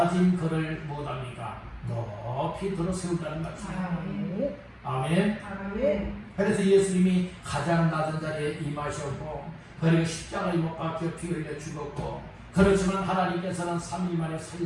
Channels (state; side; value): identical; both; correlation 1.00